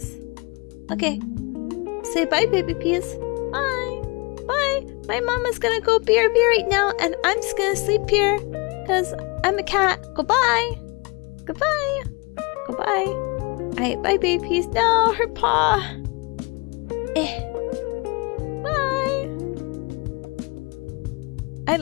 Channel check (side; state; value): right; quieter; 28.5 dB